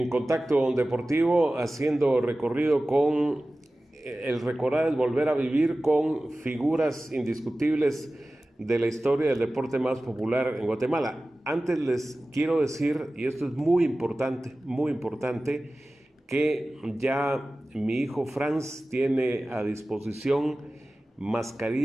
Contacto Deportivo haciendo recorrido con el recordar es volver a vivir con figuras indiscutibles de la historia del deporte más popular en Guatemala. Antes les quiero decir, y esto es muy importante, que ya mi hijo Franz tiene a disposición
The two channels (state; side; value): normal; both; correlation 0.96